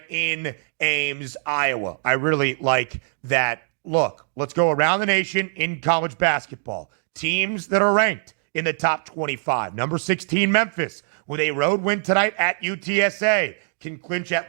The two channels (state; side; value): silent; left; 63 dB below the other